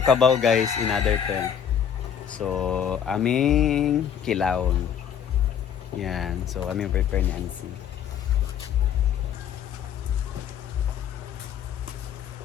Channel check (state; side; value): quieter; right; 8.5 dB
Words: guys, in other term. So aming kilawon. Yan, so aming prepare ni Anse.